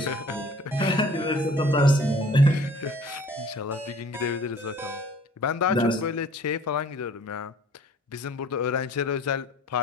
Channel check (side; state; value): both; normal; correlation 0.52